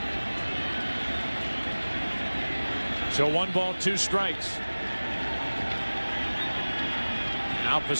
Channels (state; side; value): inverted; both; correlation -1.00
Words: So 1 ball, 2 strikes. Now